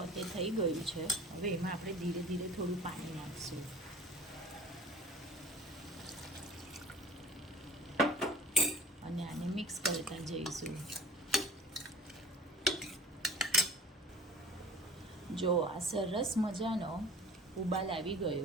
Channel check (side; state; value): both; normal; correlation 0.44